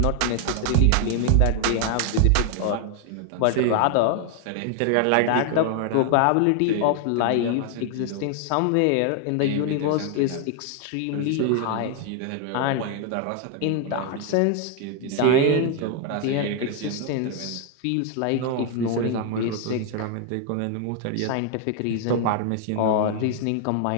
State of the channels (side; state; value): both; different; correlation 0.00